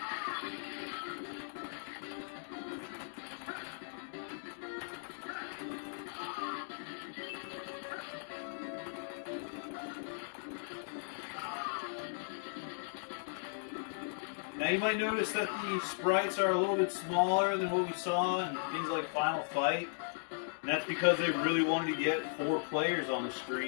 Now you might notice that the sprites are a little bit smaller than what we saw in things like Final Fight. And that's because they really wanted to get 4 players on the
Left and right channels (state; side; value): silent; right; digital silence